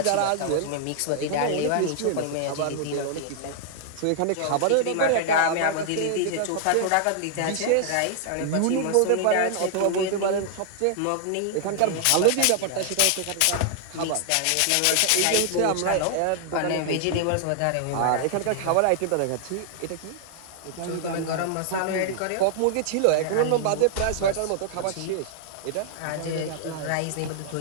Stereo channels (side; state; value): both; different; correlation 0.00